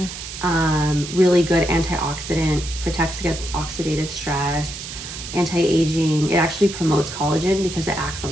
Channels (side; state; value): right; noise; hiss, 10 dB below the sound